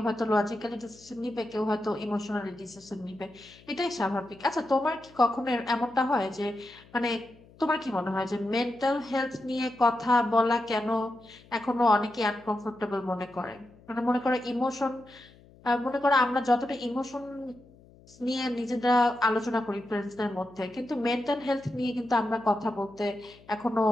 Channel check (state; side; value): noise; left; hum, 25 dB below the sound